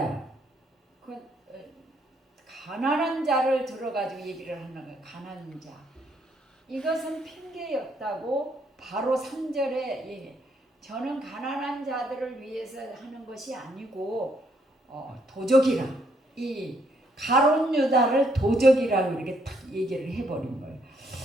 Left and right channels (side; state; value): both; normal; correlation 0.71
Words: 그 가난한 자를 들어가지고 얘기를 하는 거예요. 가난한 자. 이것은 핑계였다고 바로 3절에 저는 가난한 자들을 위해서 하는 것이 아니고 도적이라 이 가룟 유다를 도적이라고 이렇게 딱 얘기를 해버린 거예요.